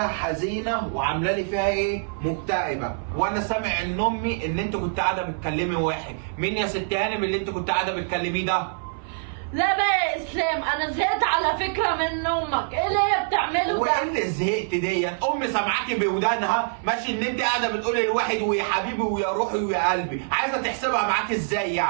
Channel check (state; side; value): silent; left; 58 dB below the other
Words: حزينه وعامله لي فيها ايه؟ مكتئبه، وانا سامع ان امي ان انت كنت قاعده بتكلمي واحد. مين يا ست هانم اللي انت كنت قاعده بتكلميه ده؟ لا بقى يا اسلام انا زهقت على فكره من امك، ايه اللي هي بتعمله ده؟ وايه اللي زهقت دي؟ امي سامعاكي بودانها ماشي ان انت قاعده بتقولي لواحد ويا حبيبي ويا روحي ويا قلبي، عايزه تحسبها معاكي ازاي